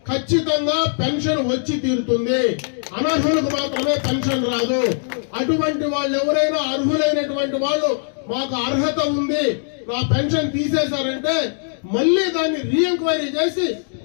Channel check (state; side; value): silent; right; digital silence